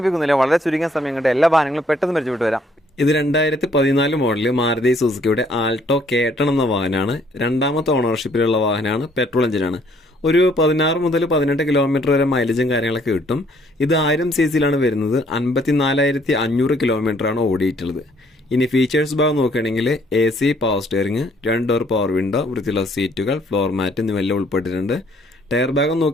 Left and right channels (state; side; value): normal; both; correlation 0.64